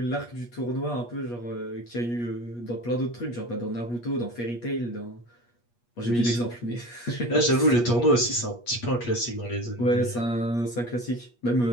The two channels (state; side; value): late; right; 8.4 ms